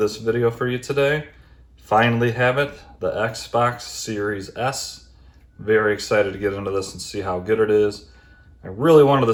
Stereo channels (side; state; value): both; identical; correlation 1.00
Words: video for you today. Finally have it, the Xbox Series S. Very excited to get into this and see how good it is. I really wanted the